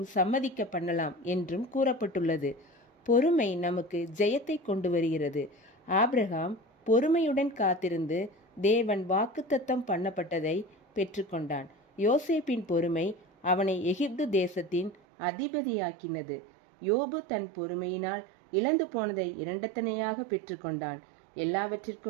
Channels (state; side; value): drops out; left; at 15.0 s